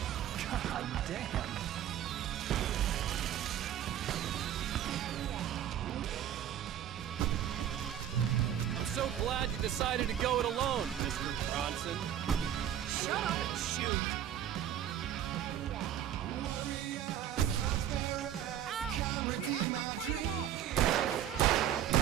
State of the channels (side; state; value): left; quieter; 10.7 dB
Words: God damn! I'm so glad you decided to go it alone, Mr. Bronson. Shut up and shoot! Ow! We have to fight them off!